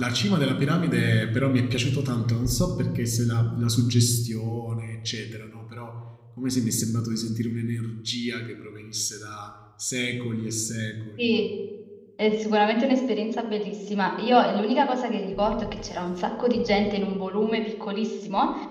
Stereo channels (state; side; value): identical; both; correlation 1.00